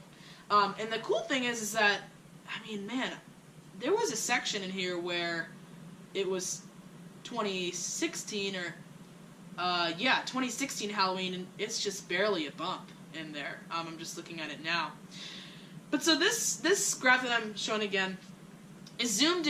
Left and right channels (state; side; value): identical; both; correlation 1.00